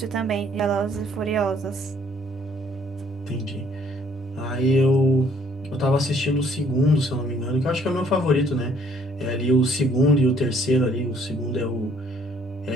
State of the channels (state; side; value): normal; both; correlation 0.62